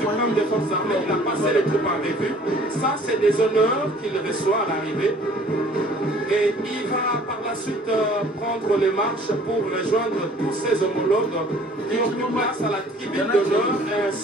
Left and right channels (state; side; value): normal; both; correlation 0.53